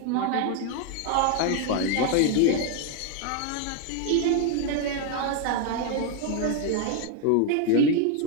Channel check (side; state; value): both; different; correlation 0.01